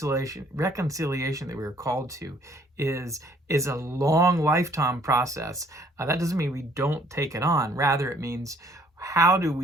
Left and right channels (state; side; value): normal; both; correlation 0.61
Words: that we were called to is a long lifetime process. That doesn't mean we don't take it on. Rather, it means, how do